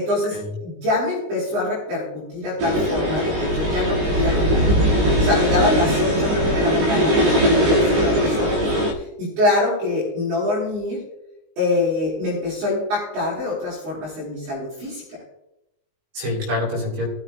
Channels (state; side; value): late; left; 19 ms